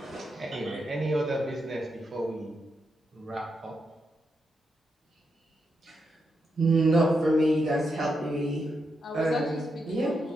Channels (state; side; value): normal; both; correlation 0.84